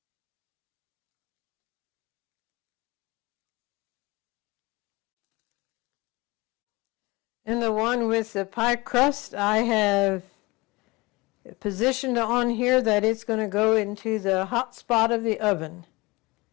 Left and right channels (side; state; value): right; quieter; 23.5 dB